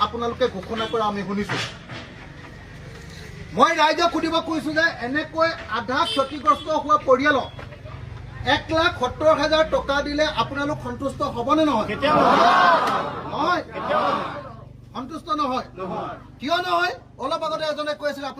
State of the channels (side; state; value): both; identical; correlation 1.00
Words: আপোনালোকে ঘোষণা কৰা আমি শুনিছো। মই ৰাইজক সুধিব কৈছো যে এনেকৈ আধা ক্ষতিগ্ৰস্ত হোৱা পৰিয়ালক 1,70,000 টকা দিলে আপোনালোক সন্তুষ্ট হ'বনে নহয়? নহয়, সন্তুষ্ট নহয়। কিয় নহয়? অলপ আগতে এজনে কৈ আছিল,